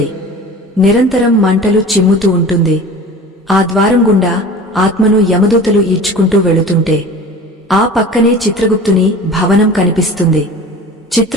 నిరంతరం మంటలు చిమ్ముతూ ఉంటుంది. ఆ ద్వారం గుండా ఆత్మను యమదూతలు ఈడ్చుకుంటూ వెళుతుంటే ఆ పక్కనే చిత్రగుప్తుని భవనం కనిపిస్తుంది.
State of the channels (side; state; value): both; normal; correlation 0.39